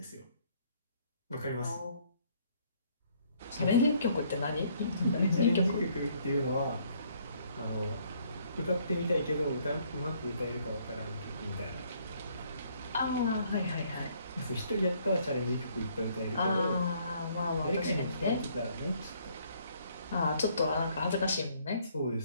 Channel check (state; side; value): inverted; both; correlation -0.65